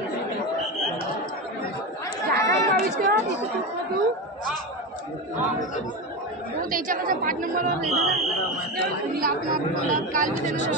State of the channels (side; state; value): both; normal; correlation 0.19